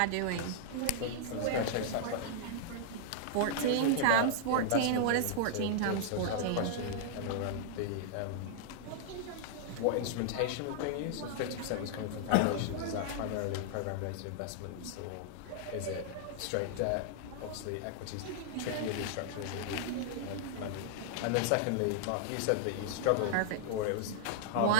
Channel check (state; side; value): different; both; correlation 0.00